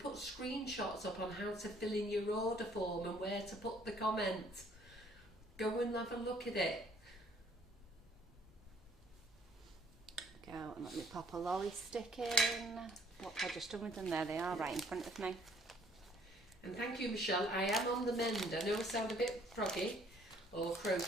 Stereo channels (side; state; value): both; normal; correlation 0.61